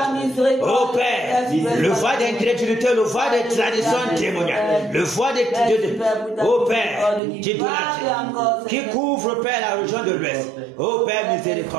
Oh Père, le voie d'incrédulité, le voie des traditions démoniaques, le voie des oh Père, qui couvre, Père, la région de l'Ouest. Oh Père,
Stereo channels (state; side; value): drops out; left; at 7.2 s